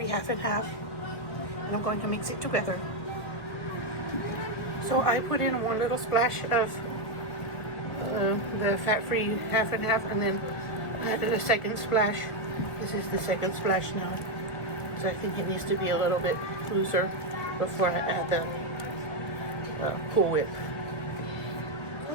half and half, and I'm going to mix it together. So I put in one little splash of the fat-free half and half, and then I added a second splash. This is the second splash now. So I think it needs to be a little bit looser before I add the Cool Whip.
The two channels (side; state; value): right; late; 1.3 ms